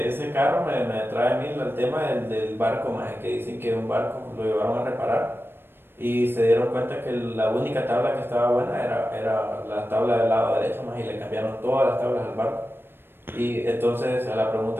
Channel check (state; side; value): late; left; 0.10 ms